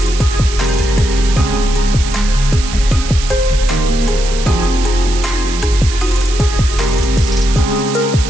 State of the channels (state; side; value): noise; right; hiss, 10 dB below the sound